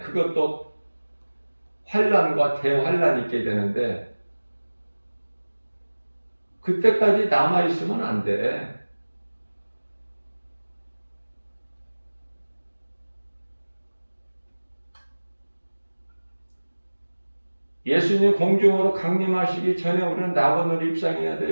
환란과 대환란이 있게 되는데, 그때까지 남아있으면 안 돼. 예수님 공중으로 강림하시기 전에 우리는 낙원으로 입성해야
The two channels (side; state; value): both; inverted; correlation -1.00